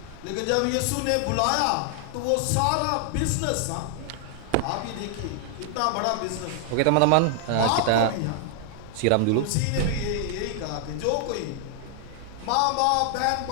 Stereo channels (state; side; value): different; both; correlation 0.00